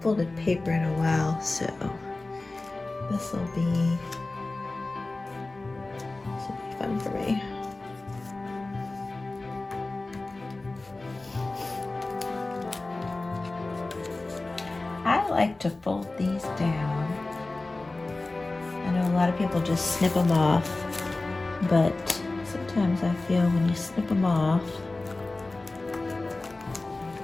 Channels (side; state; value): right; quieter; 3.2 dB